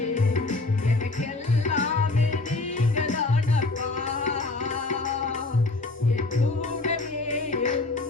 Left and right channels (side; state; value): right; quieter; 3.2 dB